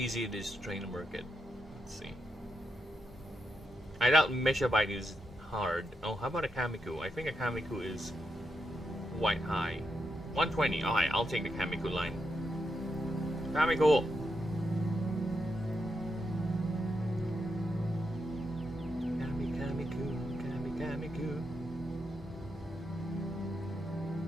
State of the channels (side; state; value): both; normal; correlation 0.83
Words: it is to train a Merkid. Let's see. I doubt Meshabite is hard. Oh, how about a Kamiku? I think a Kamiku is quite high. 120. Alright, I'll take the Kamiku line. Kamiku! Kamiku.